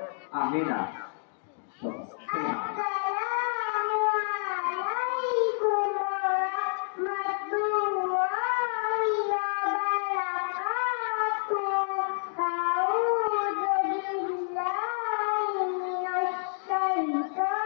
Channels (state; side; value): silent; right; digital silence